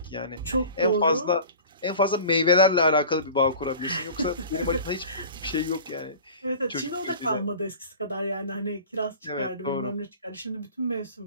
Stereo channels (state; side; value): inverted; both; correlation -0.40